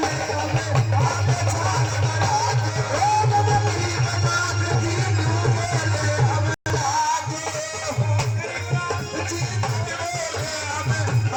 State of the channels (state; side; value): identical; both; correlation 1.00